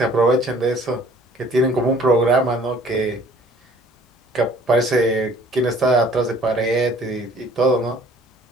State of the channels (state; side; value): normal; both; correlation 0.54